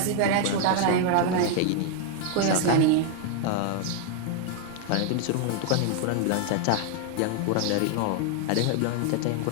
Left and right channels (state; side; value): different; both; correlation 0.00